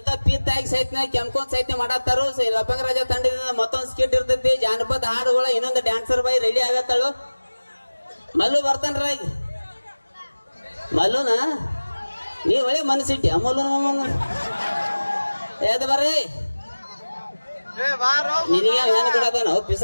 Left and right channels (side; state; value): both; inverted; correlation -1.00